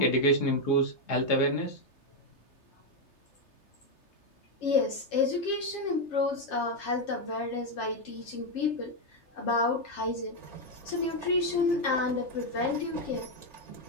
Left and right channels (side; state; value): right; late; 3.3 ms